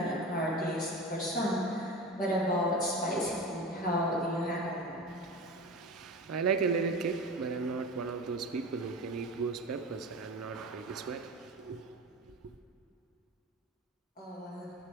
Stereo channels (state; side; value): normal; both; correlation 0.30